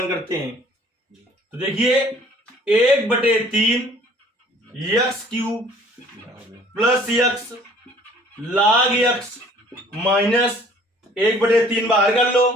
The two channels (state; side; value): normal; both; correlation 0.54